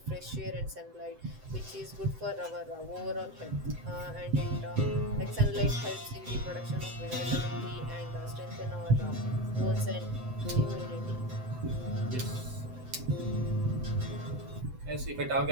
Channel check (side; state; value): left; late; 7.8 ms